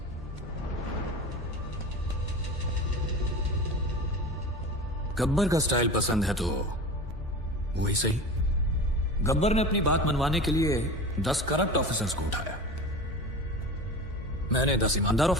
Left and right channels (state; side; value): normal; both; correlation 0.31